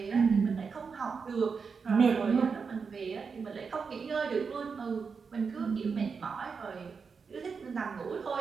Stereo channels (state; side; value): quieter; left; 5.4 dB